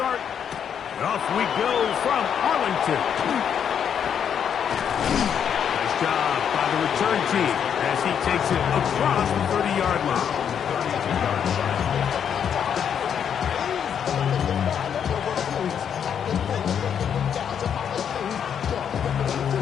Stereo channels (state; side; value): quieter; right; 8.2 dB